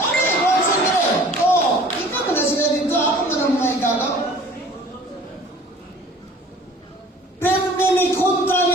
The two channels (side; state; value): both; normal; correlation 0.49